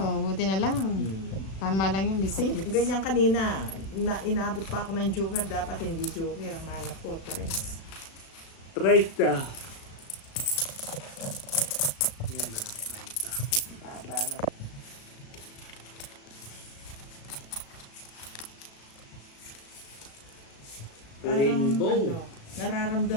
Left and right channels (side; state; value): right; late; 36 ms